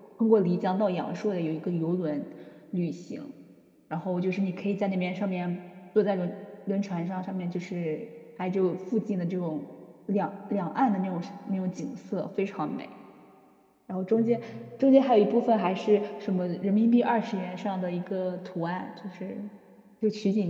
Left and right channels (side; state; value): both; identical; correlation 1.00